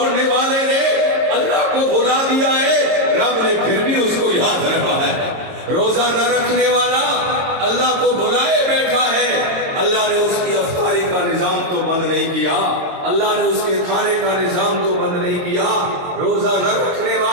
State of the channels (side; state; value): left; late; 22 ms